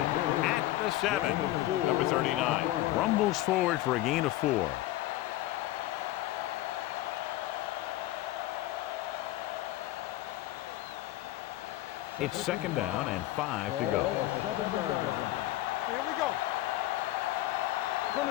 At the 7. Number 39. Rumbles forward for a gain of 4. It's 2nd down and 5 to go. On the 7-yard line. Here we go. From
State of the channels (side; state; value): right; quieter; 16.0 dB